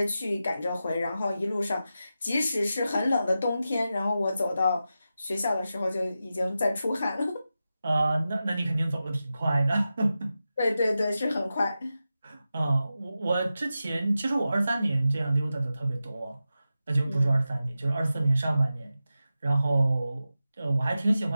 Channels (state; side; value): inverted; both; correlation -0.92